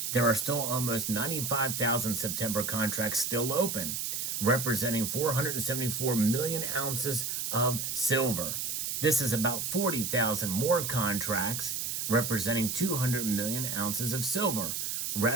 there are still almost 95,000 September contracts still open, representing 474 million ounces of silver. This is about 40,000 more contracts representing 200 million ounces of silver,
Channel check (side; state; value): right; noise; hiss, 2 dB below the sound